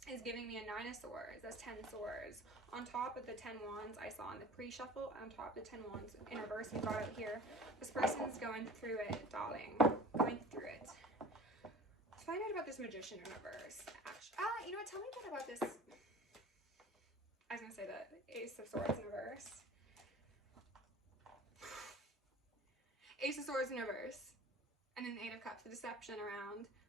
is giving me a 9 of Swords. That's 10 swords. On top of the 10 wands I saw in the pre-shuffle, on top of the 10 wands in reverse we got out here, this person's going through it, darling. Going through it. Let's find out about this Magician in reverse. You know what? Tell me a bit about this. I was going to say the Ace of Swords in reverse. Ace of Swords in reverse. And then the 8 of Cups, the deception around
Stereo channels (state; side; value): normal; both; correlation 0.42